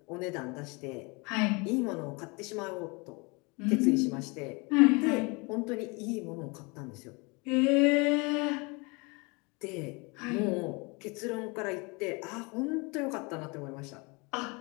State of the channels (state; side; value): quieter; right; 28.6 dB